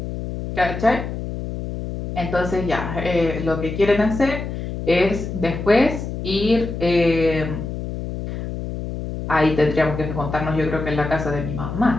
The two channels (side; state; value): left; noise; hum, 6 dB below the sound